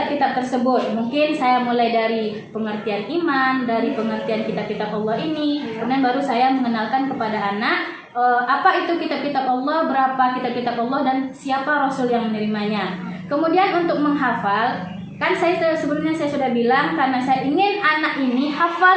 tersebut. Mungkin saya mulai dari pengertian iman, dari pengertian kitab-kitab Allah ini, kemudian baru saya mengenalkan kepada anak apa itu kitab-kitab Allah, berapa kitab-kitab Allah, dan siapa Rasul yang menerimanya. Kemudian untuk menghafal, kan sebelumnya saya sudah bilang karena saya ingin anak ini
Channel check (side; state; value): both; identical; correlation 1.00